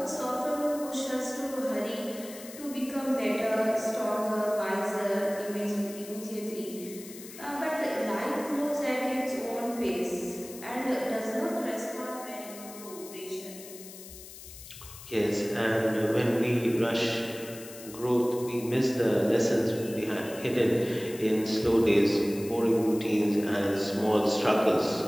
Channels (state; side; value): noise; left; hiss, 15 dB below the sound